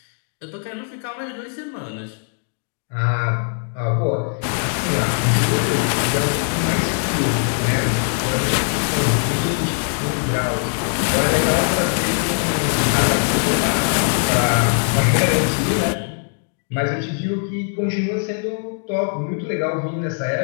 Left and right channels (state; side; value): silent; right; 65 dB below the other